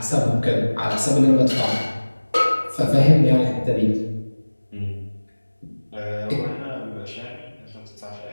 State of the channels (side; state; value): both; inverted; correlation -1.00